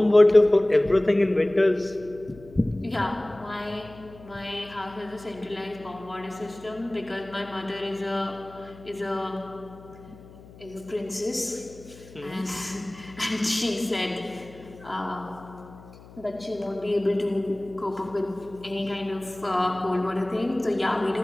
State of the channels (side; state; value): left; noise; hum, 20 dB below the sound